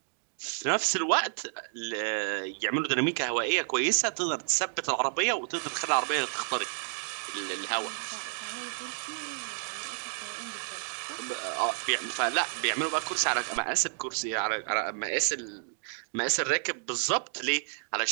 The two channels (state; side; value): silent; left; digital silence